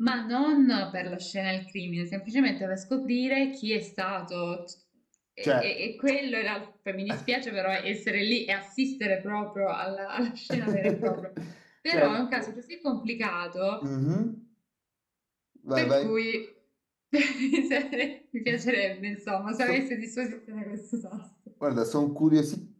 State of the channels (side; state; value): both; identical; correlation 1.00